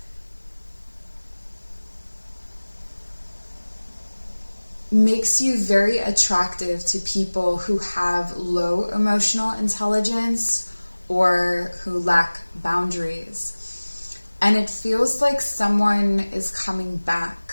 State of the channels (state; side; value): inverted; both; correlation -1.00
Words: makes you very attractive to people who have low emotional intelligence or who lack boundaries. And it feels like someone is coming back